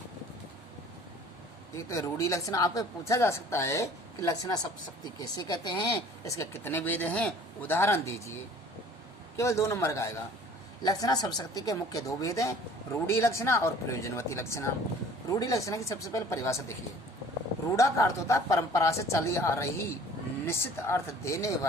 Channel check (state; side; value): normal; both; correlation 0.50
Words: एक तो रूढ़ी लक्षणा, आपको पूछा जा सकता है कि लक्षणा शब्द शक्ति कैसे कहते हैं, इसके कितने भेद हैं, उदाहरण दीजिए। केवल 2 नंबर का आएगा। लक्षणा शब्द शक्ति के मुख्य दो भेद हैं, रूढ़ी लक्षणा और प्रयोजनवती लक्षणा। रूढ़ी लक्षणा की सबसे पहले परिभाषा देखिए। रूढ़ा का अर्थ होता है परंपरा से चली आ रही निश्चित अर्थ देने